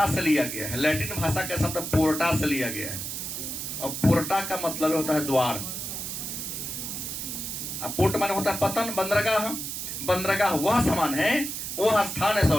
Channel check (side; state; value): right; noise; hiss, 5 dB below the sound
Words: से लिया गया है, लैटिन भाषा का शब्द पोर्टा से लिया गया है, और पोर्टा का मतलब होता है द्वार। अब पोर्ट माने होता है पतन, बंदरगाह, बंदरगाह वह सामान है, वह स्थान है,